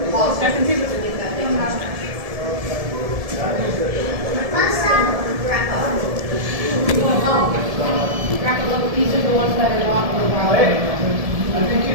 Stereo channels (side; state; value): left; late; 1.7 ms